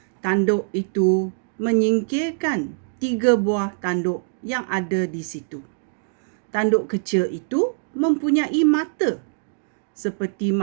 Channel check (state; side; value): silent; left; digital silence